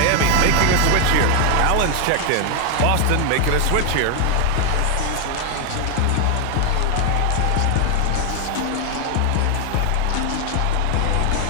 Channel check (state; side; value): different; both; correlation 0.00